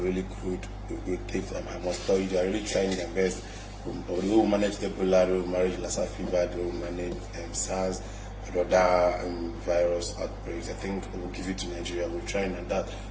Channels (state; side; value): identical; both; correlation 1.00